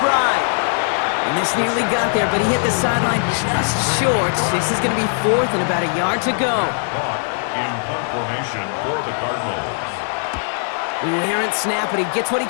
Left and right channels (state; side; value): silent; right; digital silence